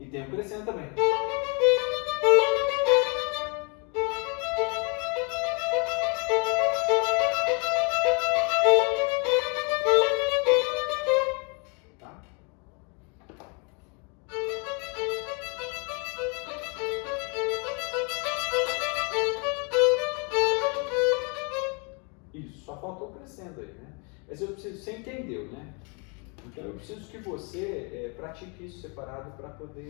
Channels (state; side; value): quieter; right; 33.9 dB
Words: tem um crescendo também. Tá? Isso, só faltou crescendo aí, né? Mas eu preciso, você entendeu, né? Então eu preciso que você pratique isso separado para